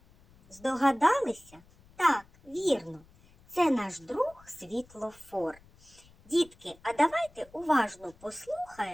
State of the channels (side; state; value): left; noise; rumble, 27 dB below the sound